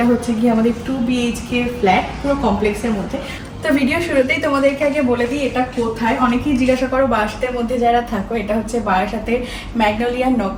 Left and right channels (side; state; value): both; identical; correlation 1.00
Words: হচ্ছে গিয়ে আমাদের 2 BHK ফ্ল্যাট পুরো কমপ্লেক্সের মধ্যে। তো ভিডিও শুরুতেই তোমাদেরকে আগে বলে দিই এটা কোথায়। অনেকেই জিজ্ঞাসা করো বারাসাতের মধ্যে যারা থাকো, এটা হচ্ছে বারাসাতের ম্যাগনোলিয়া